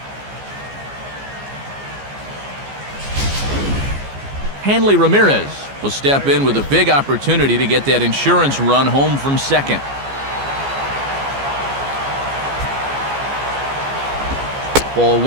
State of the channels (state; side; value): late; left; 14 ms